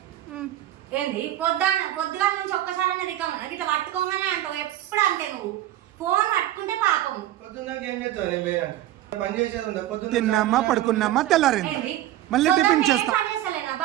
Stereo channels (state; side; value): quieter; left; 13.7 dB